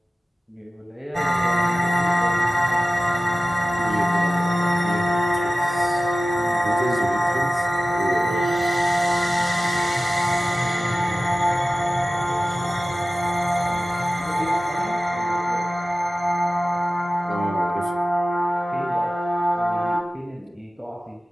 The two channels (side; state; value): both; normal; correlation 0.96